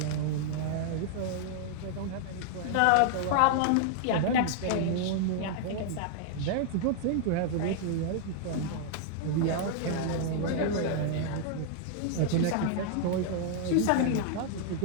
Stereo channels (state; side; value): different; both; correlation -0.01